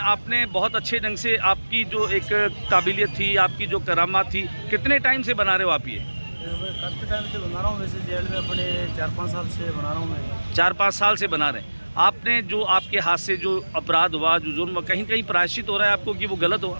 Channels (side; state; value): both; inverted; correlation -1.00